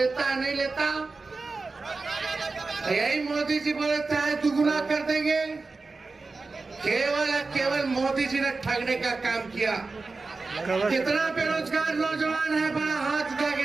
है नहीं लेता? यही मोदी जी बोले थे दुगुना कर देंगे। केवल मोदी जी ने ठगने का काम किया। कितना बेरोजगार नौजवान है, बड़ा हाथ उठा के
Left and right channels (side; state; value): left; quieter; 3.9 dB